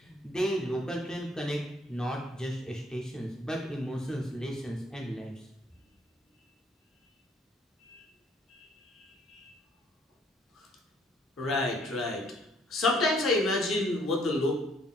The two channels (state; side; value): normal; both; correlation 0.64